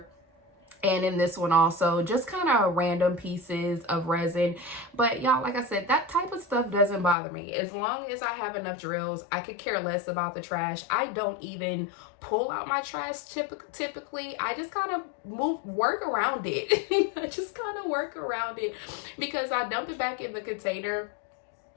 And in this one also, just kind of random pieces of resin. But y'all, like I said, that type of stuff doesn't bother me. As long as I have enough drills, I could care less about the trash. I don't even pull out my trash typically. I just kind of work around it. I just kind of work around it because I dump it back in the container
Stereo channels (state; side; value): drops out; right; at 7.2 s